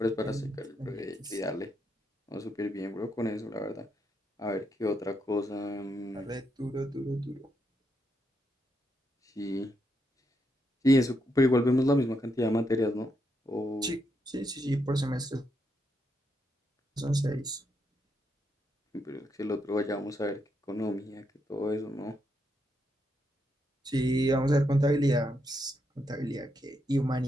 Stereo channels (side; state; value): both; normal; correlation 0.80